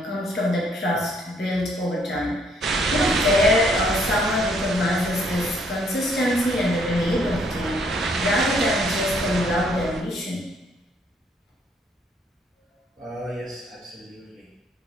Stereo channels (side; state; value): both; normal; correlation 0.66